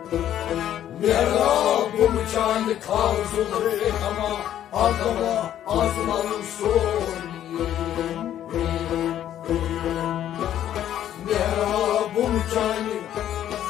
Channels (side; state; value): right; quieter; 11.2 dB